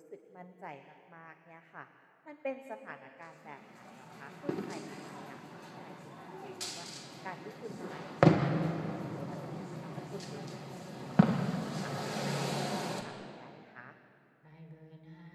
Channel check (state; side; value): identical; both; correlation 1.00